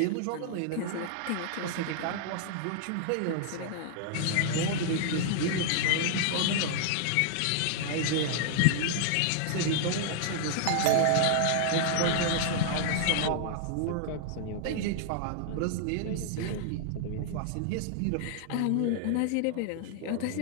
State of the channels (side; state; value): both; different; correlation -0.01